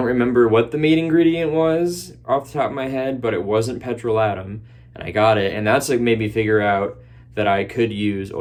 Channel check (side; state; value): both; identical; correlation 1.00